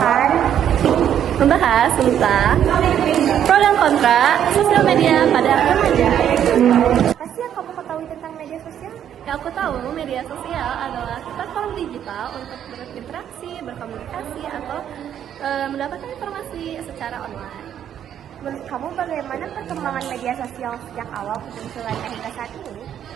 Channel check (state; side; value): quieter; left; 9.8 dB